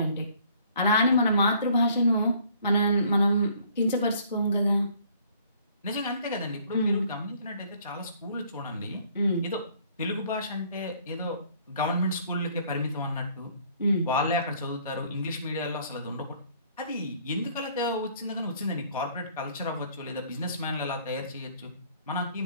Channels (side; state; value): both; inverted; correlation -0.59